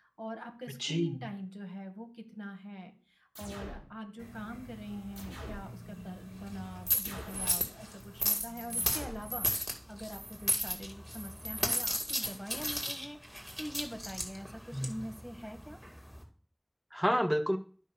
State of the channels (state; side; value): identical; both; correlation 1.00